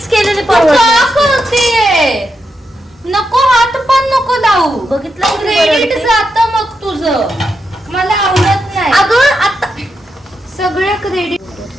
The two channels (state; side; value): normal; both; correlation 0.85